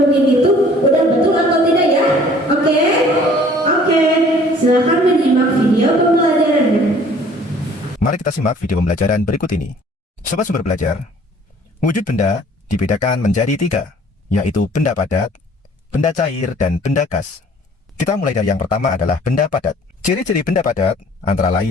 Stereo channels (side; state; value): both; normal; correlation 0.54